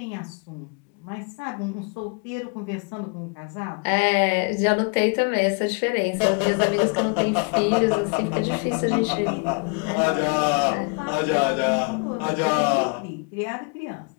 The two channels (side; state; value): right; quieter; 35.4 dB